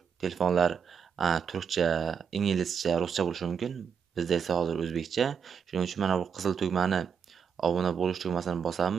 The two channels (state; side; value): quieter; left; 6.8 dB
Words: telefonlar turkcha, inglizcha, ruscha bo'lishi mumkin. Bizda esa hozir o'zbekcha. Shuning uchun mana bu qizil tugmani obuna bo'lish tugmasini